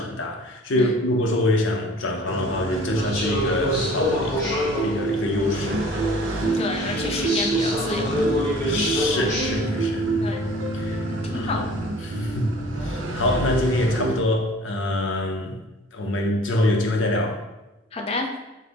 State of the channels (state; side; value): normal; both; correlation 0.48